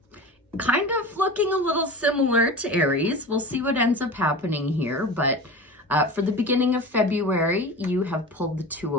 kind of looking a little similar to Aries. We'll see what ends up happening here, but for the beginning of February, you have pulled the Two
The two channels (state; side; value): normal; both; correlation 0.32